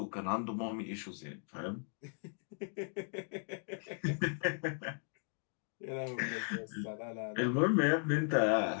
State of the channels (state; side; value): silent; right; 53 dB below the other